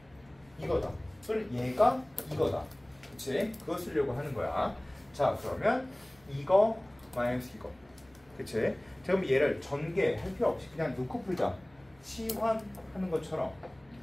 이거다. 또는 얘가 이거다. 그치? 그거 쓰려고 하는 거야. 자, 그러면 이거 마이너스 이거. 그치? 그럼 얘를 전개할 필요 없이 그냥 놓고 풀자. 치환하는 것처럼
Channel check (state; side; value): noise; left; hum, 30 dB below the sound